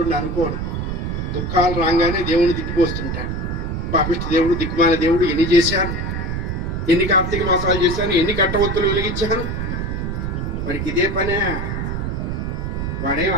అనుకోడు. దుఃఖాలు రాగానే దేవుని తిట్టిపోస్తుంటాడు. పాపిష్టి దేవుడు, దిక్కుమాల దేవుడు, ఎన్ని చేశాను, ఎన్ని కార్తీక మాసాలు చేశాను, ఎన్ని కట్టవత్తులు వెలిగించాను. వాడికి ఇదే పనే. వాడేం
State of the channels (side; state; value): right; noise; rumble, 3 dB below the sound